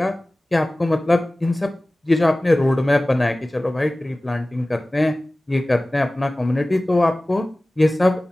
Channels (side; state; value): both; normal; correlation 0.98